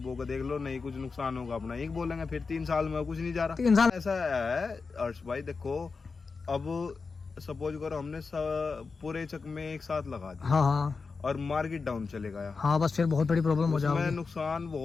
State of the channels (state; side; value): quieter; right; 4.6 dB